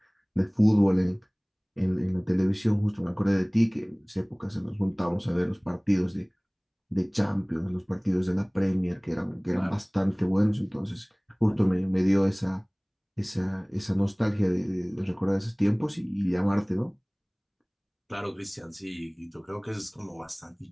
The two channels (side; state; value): both; identical; correlation 1.00